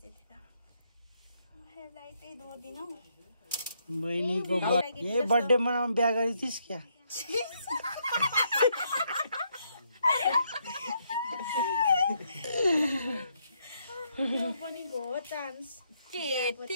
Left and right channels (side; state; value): both; inverted; correlation -0.75